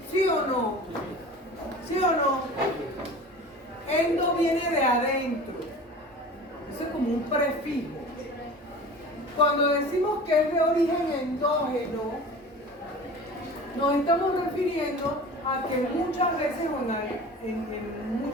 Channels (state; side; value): normal; both; correlation 0.38